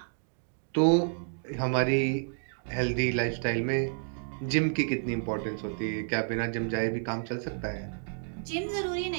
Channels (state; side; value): silent; left; digital silence